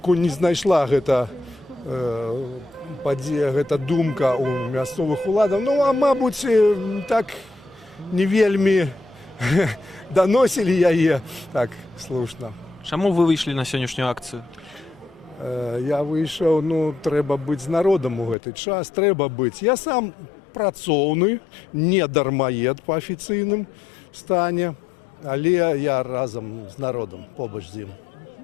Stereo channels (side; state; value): right; drops out; at 18.4 s